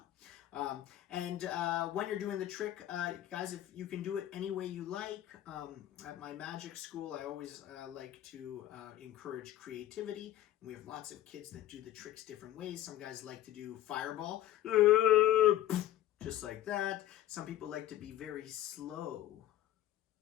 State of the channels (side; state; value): right; quieter; 13.1 dB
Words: When you're doing the trick, guys, if you can do it any way you like. At my magic school, I always like to encourage creativity. And we have lots of kids that do the tricks different ways. Some guys like to do fireball, just like that. Some people like to be very slow.